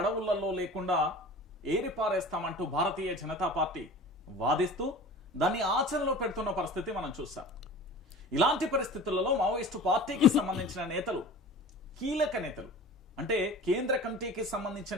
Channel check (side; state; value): both; normal; correlation 0.39